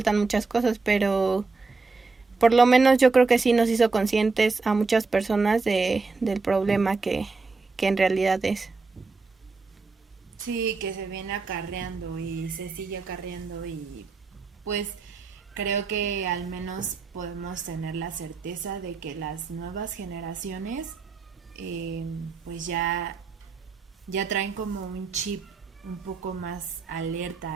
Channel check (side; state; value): left; quieter; 4.2 dB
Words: muchas cosas, pero por lo menos yo creo que sí nos hizo conscientes a muchas personas del problema que en realidad es. Sí, que se viene acarreando y se sigue acarreando, y pues creo que al menos podemos tener la certeza de que las nuevas generaciones pues ya traen como un chip un poco más alerta